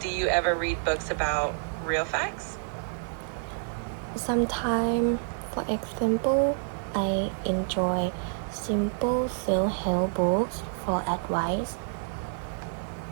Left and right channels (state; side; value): silent; left; digital silence